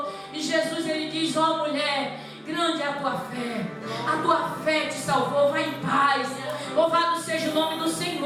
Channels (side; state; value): both; identical; correlation 1.00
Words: E Jesus, ele diz, ó mulher, grande é a tua fé te salvou, vai em paz. Louvado seja o nome do